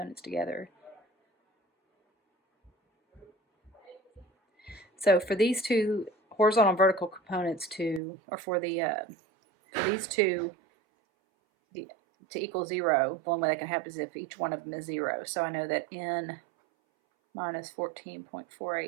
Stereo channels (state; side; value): drops out; left; at 8.0 s